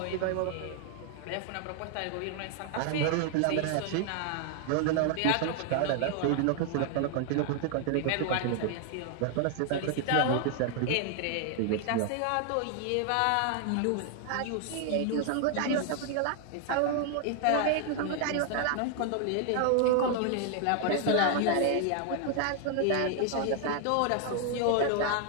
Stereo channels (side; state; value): both; different; correlation 0.00